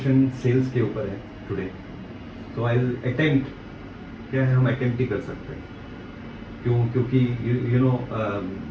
सेल्स के ऊपर है today. So I will attempt, क्या है हम अटेम्प्ट ही कर सकते हैं। क्यों? क्योंकि you know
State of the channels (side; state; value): both; identical; correlation 1.00